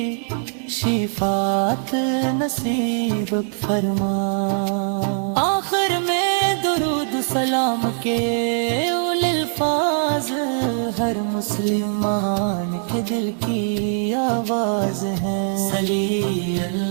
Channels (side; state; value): left; silent; 65 dB below the other